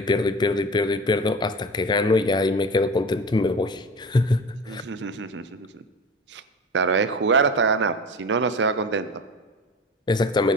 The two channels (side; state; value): both; normal; correlation 0.33